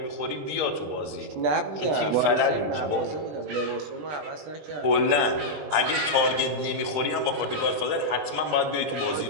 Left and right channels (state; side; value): late; left; 20 ms